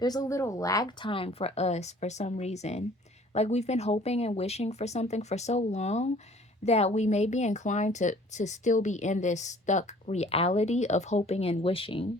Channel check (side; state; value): both; normal; correlation 0.53